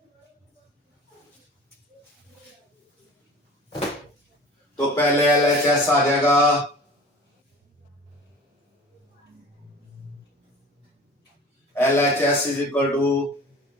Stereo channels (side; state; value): both; normal; correlation 0.41